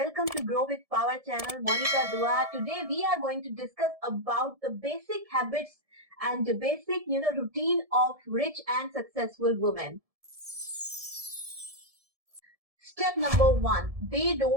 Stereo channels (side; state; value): left; late; 1.7 ms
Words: to Grow with Power channel, Monica Dua. Today we are going to discuss about the basic habits and the basic, routine of rich and successful women. Step number 1, they